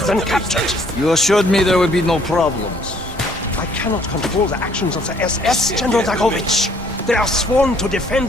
captured. You assured me there would be no problems. I cannot control the actions of the SS, General Dragovich. They are sworn to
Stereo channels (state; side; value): normal; both; correlation 0.62